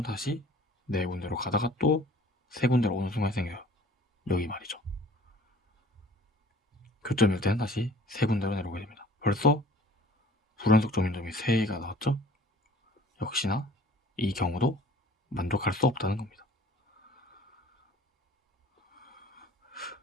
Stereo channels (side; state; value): both; normal; correlation 0.51